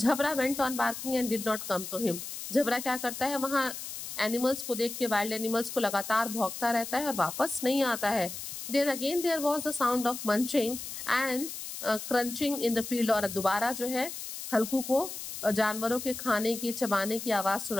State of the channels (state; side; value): noise; left; hiss, 8 dB below the sound